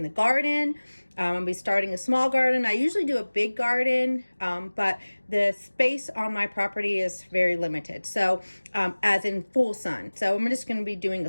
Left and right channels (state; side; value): inverted; both; correlation -1.00